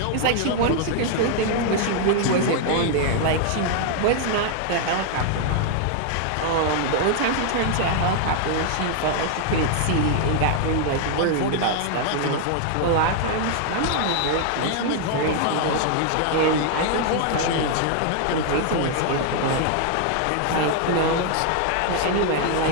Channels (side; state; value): both; different; correlation 0.00